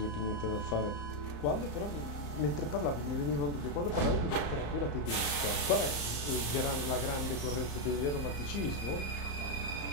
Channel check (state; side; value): late; right; 35 ms